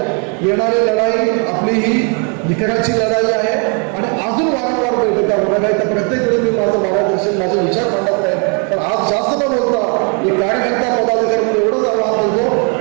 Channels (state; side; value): quieter; left; 38.0 dB